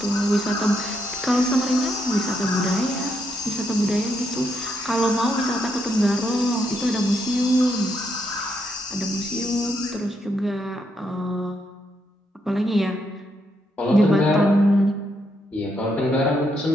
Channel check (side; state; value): both; normal; correlation 0.78